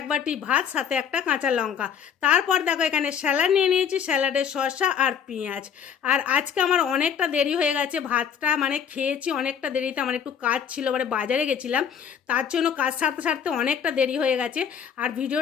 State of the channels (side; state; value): right; quieter; 7.8 dB